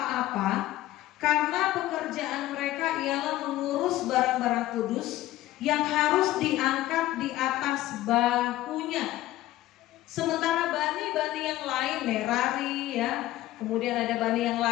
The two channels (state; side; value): quieter; right; 15.5 dB